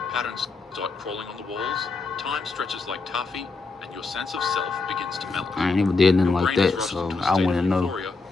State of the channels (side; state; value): right; quieter; 4.0 dB